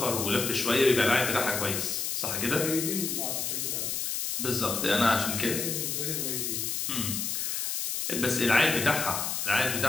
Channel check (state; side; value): noise; left; hiss, 1 dB below the sound